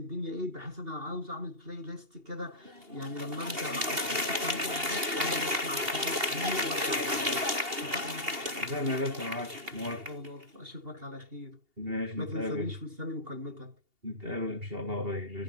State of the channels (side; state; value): left; late; 2.8 ms